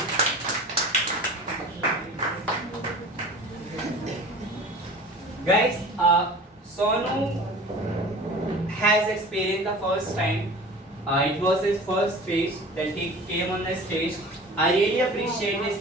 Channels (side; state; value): both; normal; correlation 0.40